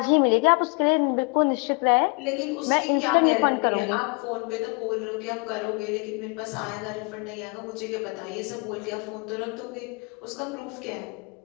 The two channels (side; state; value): right; quieter; 31.9 dB